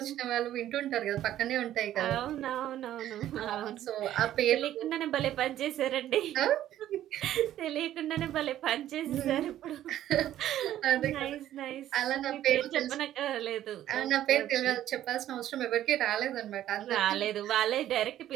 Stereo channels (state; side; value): quieter; left; 12.4 dB